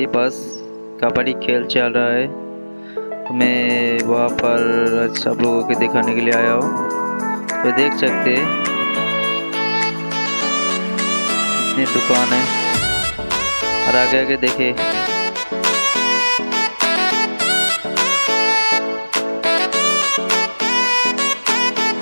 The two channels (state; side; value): inverted; both; correlation -1.00